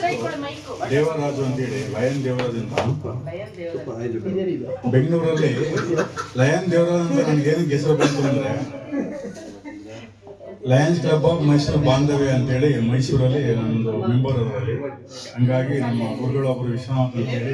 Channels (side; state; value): both; identical; correlation 1.00